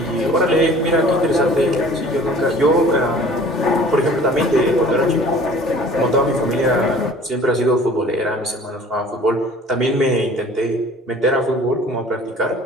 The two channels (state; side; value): normal; both; correlation 0.48